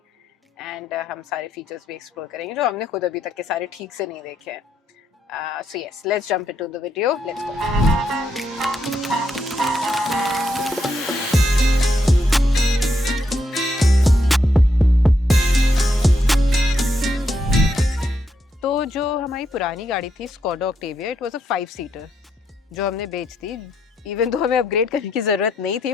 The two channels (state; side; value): normal; both; correlation 0.78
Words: एंड हम सारे फीचर्स भी एक्सप्लोर करेंगे जो हमने खुद अभी तक के सारे ठीक से नहीं देखे हैं। So yes, let's jump into the video. Let's go. तो जो हमारी पुरानी गाड़ी थी Skoda Octavia, it was a 5-सीटर जो हमने बेच दी। इवन तो हमें अपग्रेड करने की ज़रूरत नहीं थी